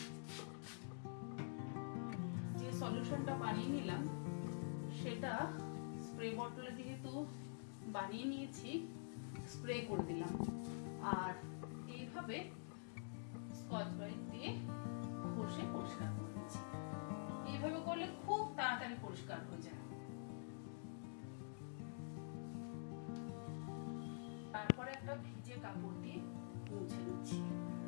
সলিউশনটা বানিয়ে নিলাম, সেটা স্প্রে বটলে যেহেতু বানিয়ে নিয়েছি, স্প্রে করে দিলাম। আর এইভাবে স্কচ ব্রাইট দিয়ে ঘষে পরিষ্কার করে দিচ্ছি। এইভাবে করলে খুব তাড়াতাড়ি পরিষ্কার হয়ে যায়। তারপরে একটা ভিজে কাপড় দিয়ে মুছে নিচ্ছি।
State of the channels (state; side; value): silent; right; digital silence